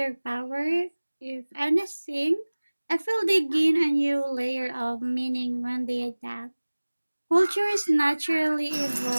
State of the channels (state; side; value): inverted; both; correlation -1.00